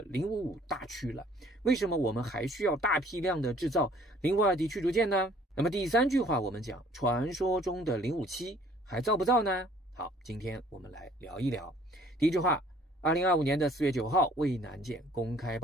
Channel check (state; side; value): normal; both; correlation 0.57